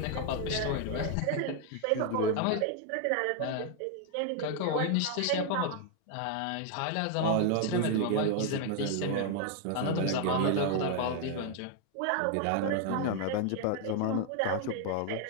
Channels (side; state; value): both; different; correlation 0.00